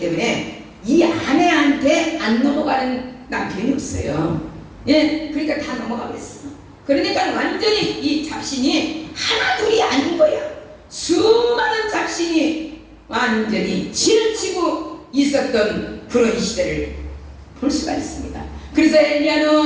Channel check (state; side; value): identical; both; correlation 1.00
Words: 이 아내한테 안 넘어가는 남편이 없어요. 예, 그러니까 다 넘어가 버렸어. 그러니까 완전히 이 잡신이 하나둘이 아닌 거야. 수많은 잡신이 완전히 치르치고 있었던 그런 시대를 볼 수가 있습니다. 그래서